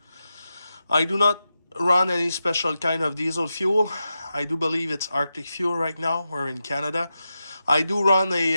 I do not run any special kind of diesel fuel. I do believe it's Arctic fuel right now. We're in Canada. I do run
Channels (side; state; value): both; inverted; correlation -0.90